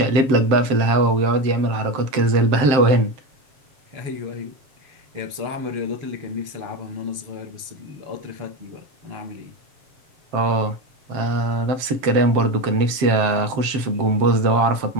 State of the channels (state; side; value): late; left; 7.5 ms